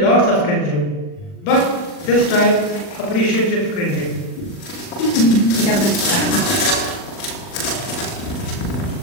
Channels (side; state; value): right; late; 40 ms